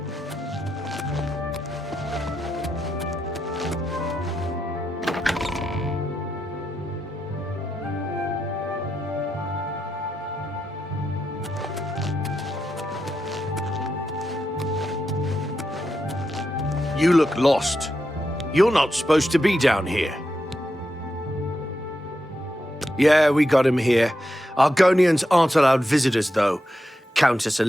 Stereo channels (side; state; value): both; normal; correlation 0.86